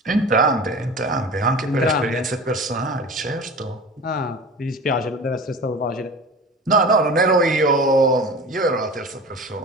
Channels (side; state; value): both; normal; correlation 0.36